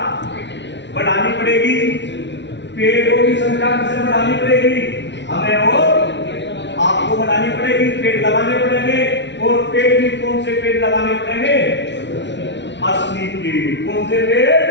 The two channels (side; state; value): right; late; 0.51 ms